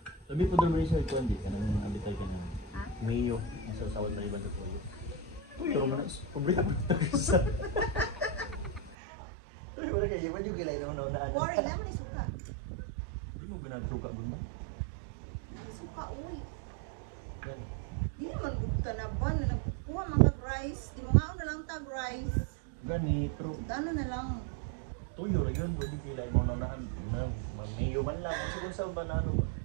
Labi po doon rin sa ito, hindi ka naman abitay ka na. Ha? Mayo, nasa sawad na iba sa tuyo. Pero manas, pumbrika mo ito sa... Uy, wala kayo, iwan yung kilay naman na ano. Worry naman yung suka. Hindi mo ginagsuka din ba? Naman suka, uy. Yan. Di naman gudta na ba na nagkukuha mga rice. Di mo nga na lang tag rice. Gani, pero Ano na lang. tuyo rin yun, pwede kilay mo na mayo man lang. Ang sigun sa ba na ano?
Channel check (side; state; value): left; drops out; at 9.0 s